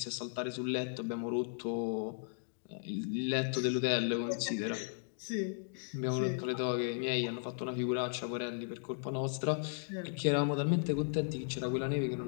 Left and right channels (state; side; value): silent; right; digital silence